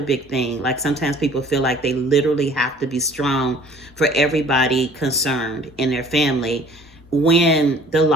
big thing. Like sometimes people feel like they literally have to be strong for everybody concerned in their family, when the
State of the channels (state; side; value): normal; both; correlation 0.52